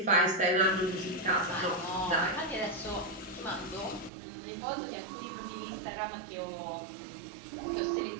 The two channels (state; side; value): drops out; left; at 4.1 s